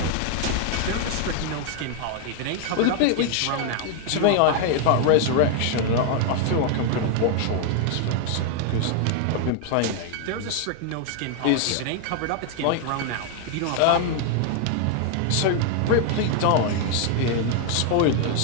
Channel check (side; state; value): both; different; correlation 0.00